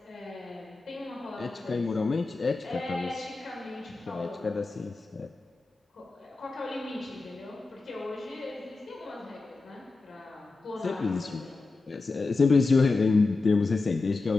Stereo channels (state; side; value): quieter; right; 3.7 dB